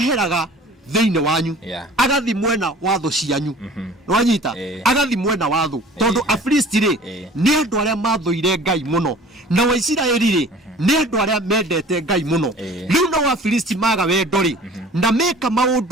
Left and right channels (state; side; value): normal; both; correlation 0.46